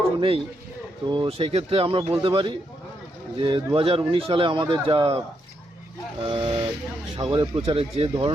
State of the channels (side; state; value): both; normal; correlation 0.80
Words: নেই। তো সেই ক্ষেত্রে আমরা বলতে পারি যে 2019 সালে আমাদের যা সাগরের প্রচারে যে